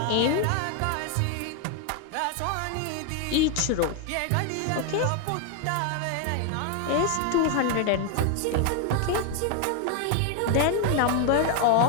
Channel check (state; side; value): different; both; correlation 0.01